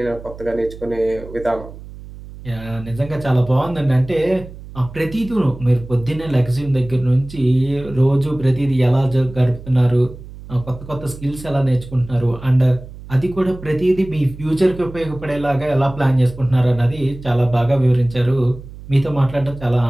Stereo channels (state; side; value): noise; right; hum, 15 dB below the sound